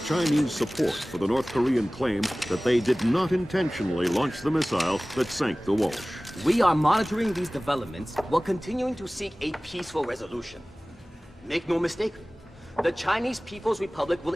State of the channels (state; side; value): normal; both; correlation 0.98